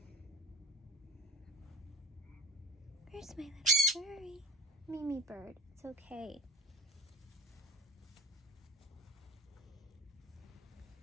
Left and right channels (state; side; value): normal; both; correlation 0.34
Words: Where's my little Suri? Mimi Bird. It's okay.